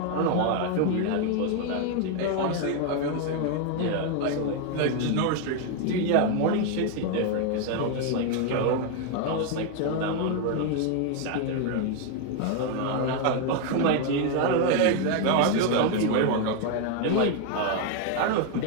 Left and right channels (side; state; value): both; different; correlation 0.01